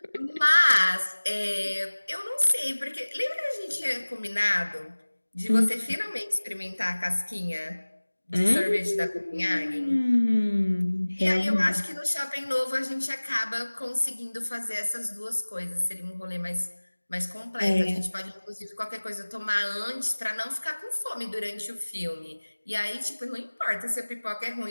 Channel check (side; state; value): both; inverted; correlation -1.00